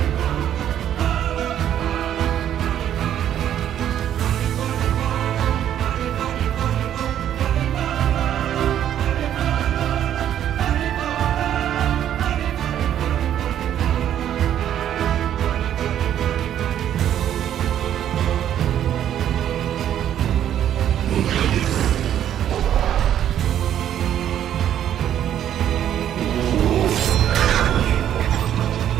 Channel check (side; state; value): left; quieter; 10.6 dB